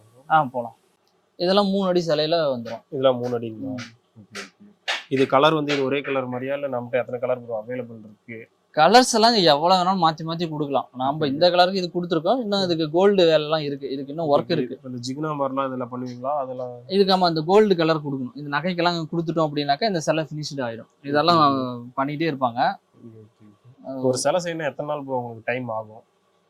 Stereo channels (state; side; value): identical; both; correlation 1.00